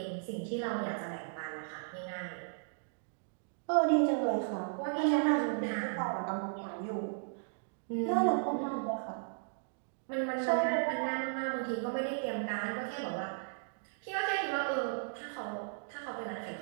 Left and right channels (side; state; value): left; silent; digital silence